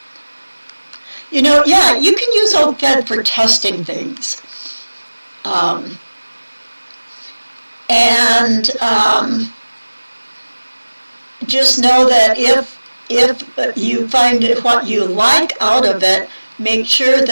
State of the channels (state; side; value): inverted; both; correlation -1.00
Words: You know, yeah, you can use old thread for testing things. Just know that if you find what you like out of it, make sure